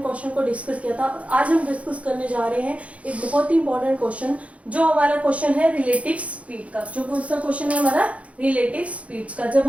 क्वेश्चन को डिस्कस किया था। आज हम डिस्कस करने जा रहे हैं एक बहुत ही इंपॉर्टेंट क्वेश्चन, जो हमारा क्वेश्चन है रिलेटिव स्पीड का। जो कौन सा क्वेश्चन है हमारा? रिलेटिव स्पीड्स का, जब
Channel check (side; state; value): left; late; 0.064 ms